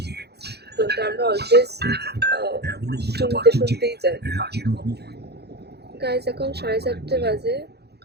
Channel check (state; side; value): late; left; 0.48 ms